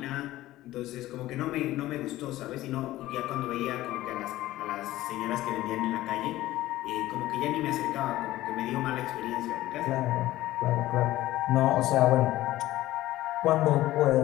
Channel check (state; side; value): quieter; right; 15.9 dB